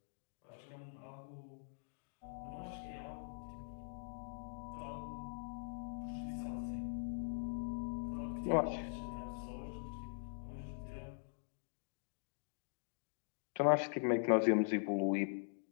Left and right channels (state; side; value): silent; right; digital silence